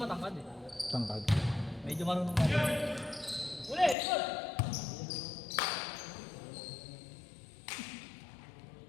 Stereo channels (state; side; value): drops out; right; at 4.0 s